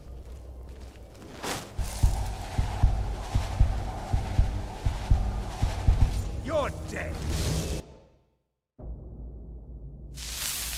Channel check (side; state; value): both; identical; correlation 1.00